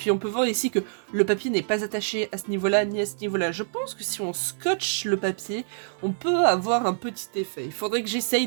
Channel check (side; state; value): left; silent; digital silence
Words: on peut voir ici que le papier n'est pas attaché à ce niveau-là, ni à ce niveau-là. Je pense que si on scotche le papier, on peut avoir un petit effet. Il faudrait que